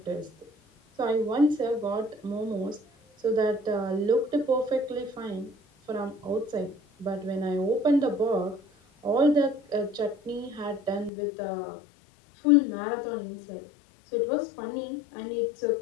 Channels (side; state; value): right; drops out; at 11.1 s